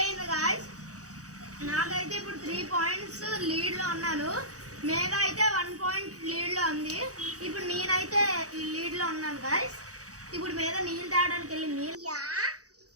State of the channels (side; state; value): left; late; 0.66 ms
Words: గాయస్. నాకైతే ఇప్పుడు 3 పాయింట్స్ లీడ్లో ఉన్నాను. మేధా అయితే 1 పాయింట్ లీడ్లో ఉంది. ఇప్పుడు నేనైతే ఈ లీడ్లో ఉన్నాను గాయస్. ఇప్పుడు మేధా నీళ్ళు తాగడానికి వెళ్ళి నీళ్ళు